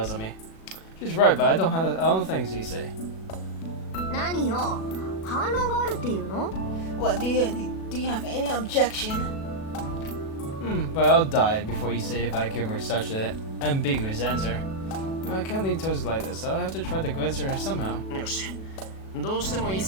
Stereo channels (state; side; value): late; right; 37 ms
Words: at me. She's right, but I don't think it's Issei. 何よ、反論があるっていうの？ What, do you have any objection? But I'll die before Issei if I give her such an ambiguous answer. I can't leave Tozuka like this, so I'll have to try to convince her somehow. よし。どうしても一